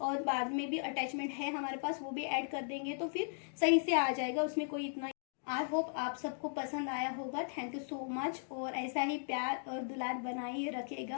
और बाद में भी अटैचमेंट है हमारे पास, वो भी ऐड कर देंगे तो फिर सही से आ जाएगा, उसमें कोई इतना आई होप आप सबको पसंद आया होगा। थैंक यू सो मच, और ऐसा ही प्यार और दुलार बनाए रखेगा,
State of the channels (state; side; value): silent; right; digital silence